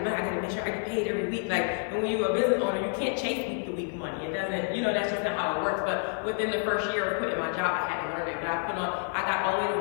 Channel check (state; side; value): silent; right; 59 dB below the other